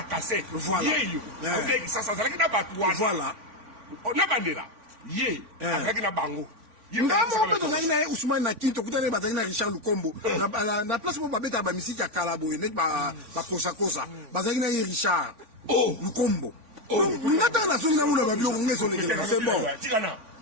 cassette. Yeyo. Ok, ça zalaki na batwa. Voilà. Na bandera. Ye. Avec na bango. Ngamo beto na Ousmane na Kinto kutane bataki na Richard Lukombo na place mo babeta ba misiki ya Kalabo nek ba kosa bazaki na Richard Lukombo donc ngata na songa ula ba bio ngeso le kela c'est bon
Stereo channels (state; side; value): late; left; 3.5 ms